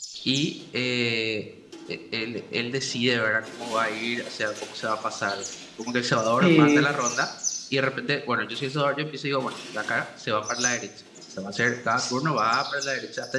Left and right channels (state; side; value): identical; both; correlation 1.00